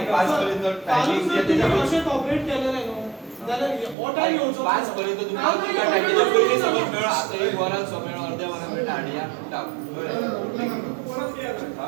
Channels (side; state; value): left; drops out; at 4.0 s